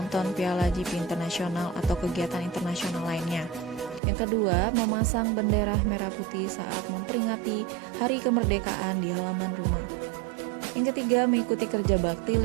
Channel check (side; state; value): left; drops out; at 4.0 s